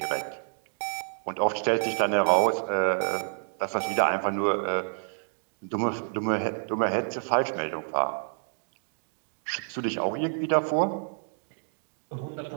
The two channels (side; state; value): left; silent; digital silence